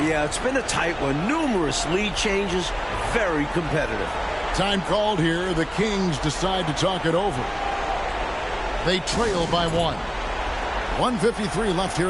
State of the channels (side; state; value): both; identical; correlation 1.00